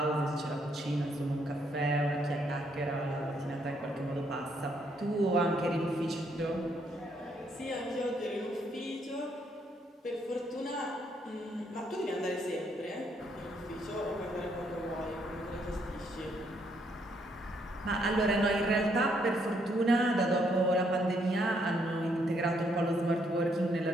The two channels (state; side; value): normal; both; correlation 0.72